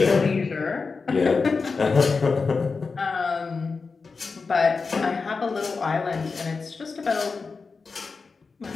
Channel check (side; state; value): right; quieter; 4.6 dB